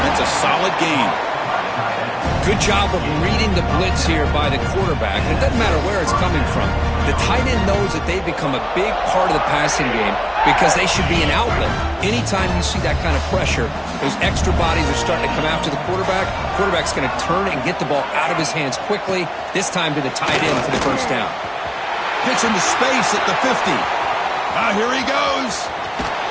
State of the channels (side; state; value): both; identical; correlation 1.00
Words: That's a solid gain. Good job of reading the blitz here by the quarterback. And it doesn't matter where it's coming from. The tight end knows that they've become a big part of the passing game because they should be an outlet. Anytime you see that kind of pressure, those extra bodies are starting to come after the quarterback. Quarterback's going to turn and get the ball out of his hands quickly, this time to the tight end for the first down. Gets into space at the 50. Here he goes.